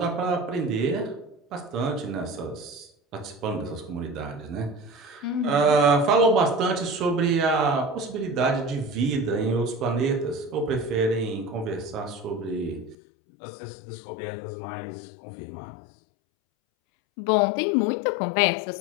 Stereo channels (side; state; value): right; drops out; at 13.0 s